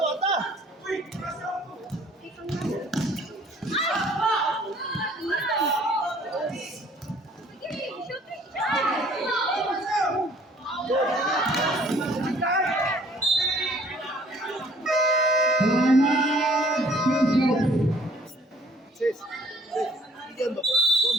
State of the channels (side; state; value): both; normal; correlation 0.57